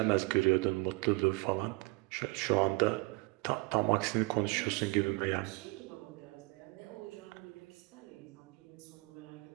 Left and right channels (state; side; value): quieter; left; 25.2 dB